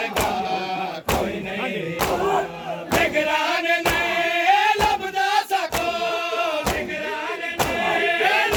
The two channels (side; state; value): both; identical; correlation 1.00